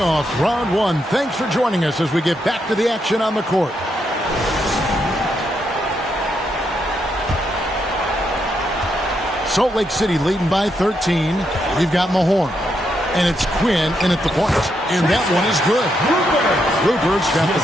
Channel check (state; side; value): normal; both; correlation 0.80